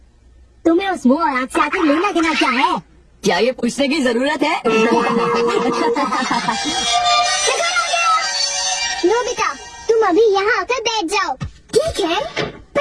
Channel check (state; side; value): identical; both; correlation 1.00